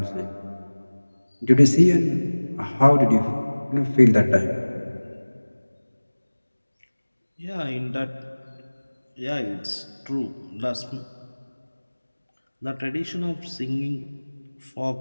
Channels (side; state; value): both; inverted; correlation -1.00